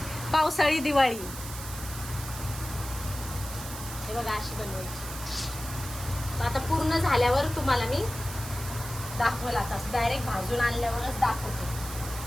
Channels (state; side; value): noise; right; hiss, 10 dB below the sound